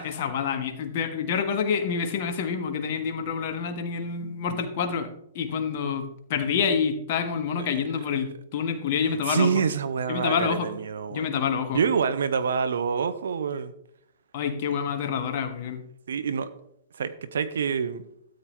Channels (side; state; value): both; inverted; correlation -0.51